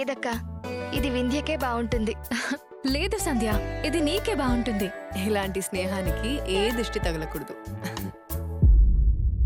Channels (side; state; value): both; identical; correlation 1.00